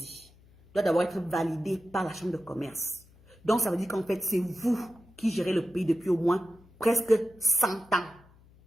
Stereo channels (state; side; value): noise; left; hum, 27 dB below the sound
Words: doit d'abord être validé par la chambre de commerce. Donc ça veut dire qu'en fait c'est vous qui gérez le pays depuis au moins presque 100 ans.